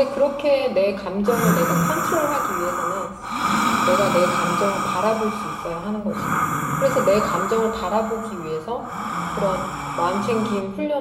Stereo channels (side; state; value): both; identical; correlation 1.00